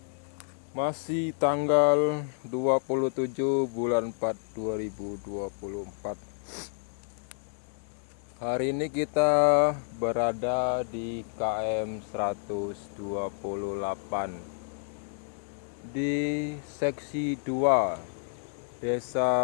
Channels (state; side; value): silent; right; digital silence